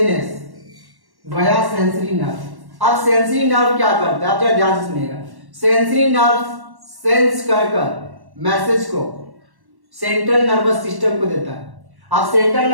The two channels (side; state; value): left; late; 1.1 ms